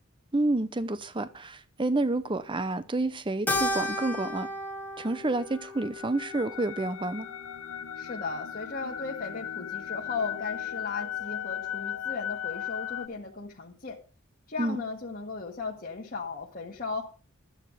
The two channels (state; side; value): normal; both; correlation 0.44